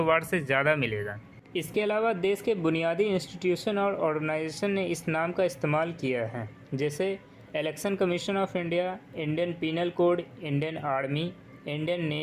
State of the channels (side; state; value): both; identical; correlation 1.00